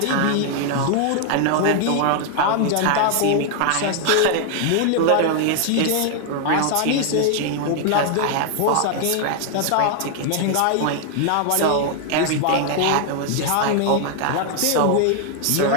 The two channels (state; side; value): different; both; correlation 0.00